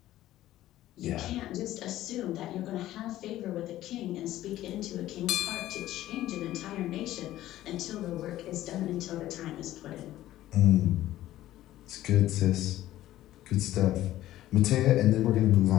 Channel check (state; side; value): quieter; right; 14.3 dB